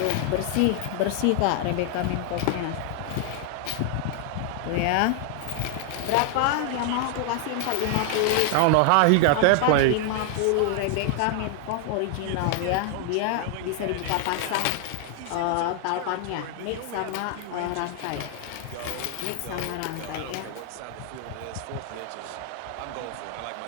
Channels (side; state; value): both; different; correlation 0.00